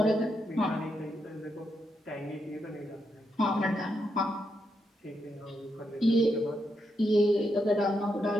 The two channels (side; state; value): both; normal; correlation 0.82